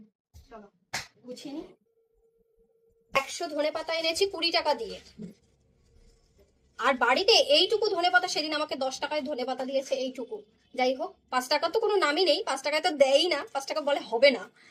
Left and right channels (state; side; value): identical; both; correlation 1.00